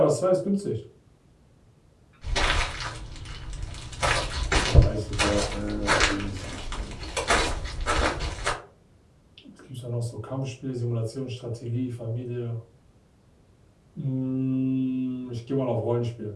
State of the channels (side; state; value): both; identical; correlation 1.00